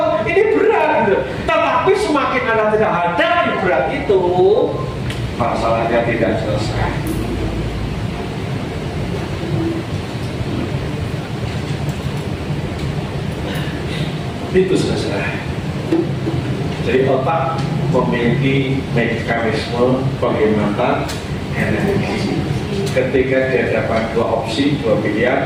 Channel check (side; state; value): both; identical; correlation 1.00